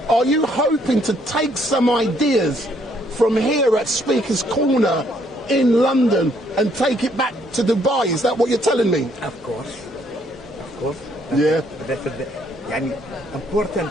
are you hoping to take some ideas from here at Speaker's Corner in London and take it back to Dubai? Is that what you're telling me? Of course. Yeah. That's important.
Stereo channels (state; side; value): normal; both; correlation 0.68